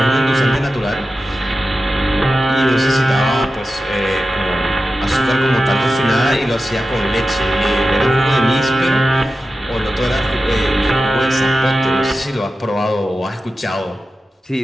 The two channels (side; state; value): both; normal; correlation 0.92